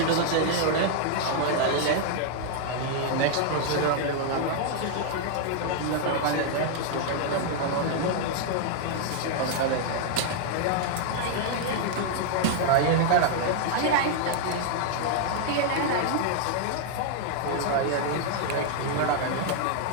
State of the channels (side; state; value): both; different; correlation 0.00